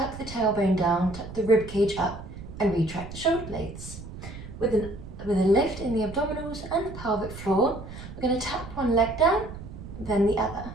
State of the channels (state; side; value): noise; right; rumble, 12 dB below the sound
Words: the tailbone down, tuck the rib cage up and retract the shoulder blades. With a lift in the abdominals and the pelvic floor, we're going to tap one leg down, then the other.